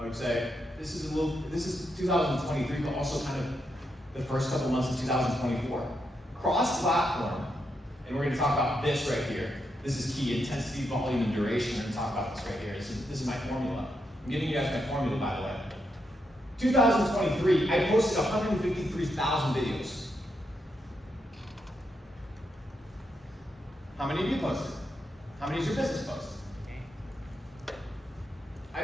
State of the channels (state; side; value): normal; both; correlation 0.82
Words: would say, this is 2023, but also kind of the first couple months of 2024. Cross-platform, and we're going to talk about this right here. This is key: intensity, volume, and duration. We're going to talk about this right here. This is my formula. I'm giving you guys my formula, by the way. 2023, I posted 153,000 videos. How many of you posted? How many is your business posted?